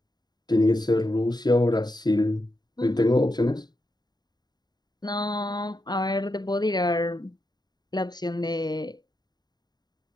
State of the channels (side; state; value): right; late; 0.20 ms